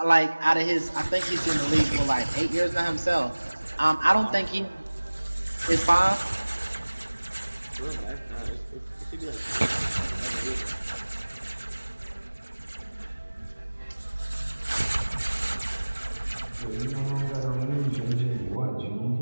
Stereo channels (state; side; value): inverted; both; correlation -1.00